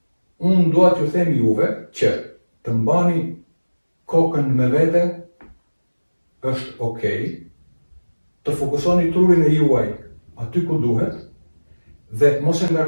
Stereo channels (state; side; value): inverted; both; correlation -1.00